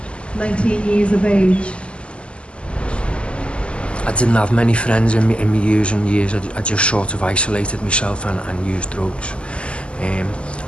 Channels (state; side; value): late; right; 0.054 ms